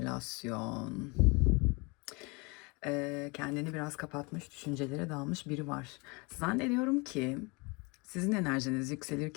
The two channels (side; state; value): right; quieter; 28.5 dB